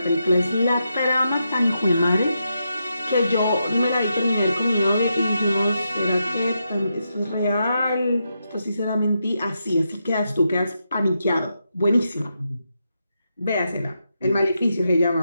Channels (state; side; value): inverted; both; correlation -0.84